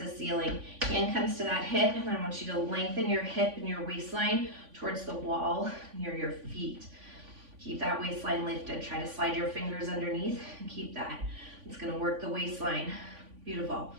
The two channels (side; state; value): left; late; 3.5 ms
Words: the ceiling. Hand comes to that hip, and I want you to lengthen your hip and your waistline towards the wall near your feet. Keep that waistline lifted. Try to slide your fingers underneath and keep that. It's going to work the waistline. Beautiful.